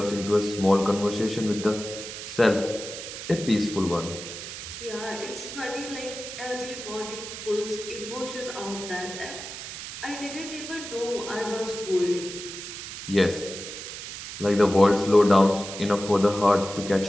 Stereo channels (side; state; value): right; noise; hiss, 9 dB below the sound